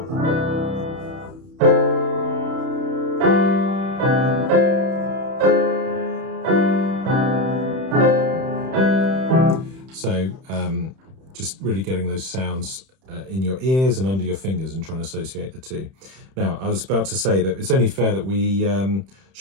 So just really getting those sounds in your ears and under your fingers and trying to associate the two. Now, I was about to say that it's only fair that we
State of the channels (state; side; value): late; left; 31 ms